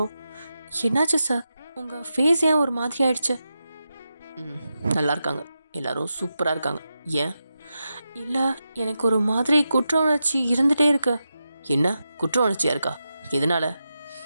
என்னாச்சு சார் உங்கள் ஃபேஸ் ஏன் ஒரு மாதிரி ஆயிடுச்சு? நல்லா இருக்காங்க, எல்லாரும் சூப்பராக இருக்காங்க. ஏன்? இல்லை, எனக்கு ஒரு மாதிரி குற்ற உணர்ச்சி இருந்துகிட்டே இருக்கு. என்ன குற்ற உணர்ச்சியாக இருக்கா? எதனால?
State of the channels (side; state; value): both; inverted; correlation -0.89